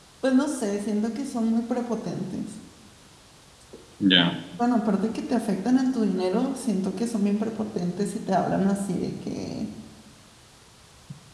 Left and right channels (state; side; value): identical; both; correlation 1.00